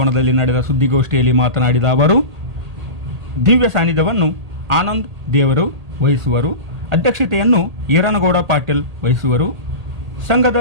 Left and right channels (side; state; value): left; late; 1.8 ms